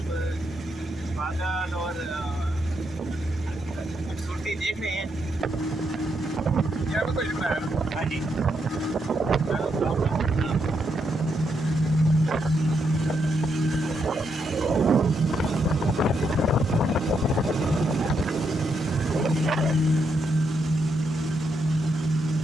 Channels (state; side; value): normal; both; correlation 0.79